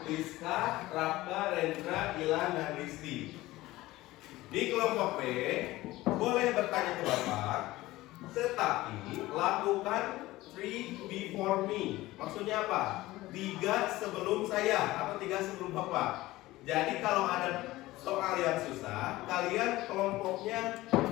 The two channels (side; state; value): right; quieter; 17.9 dB